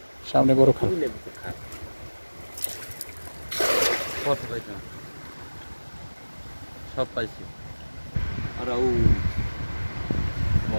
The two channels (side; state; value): both; inverted; correlation -1.00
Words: সামনে বড় খাল কত পাইছো সব পাইছি আর ও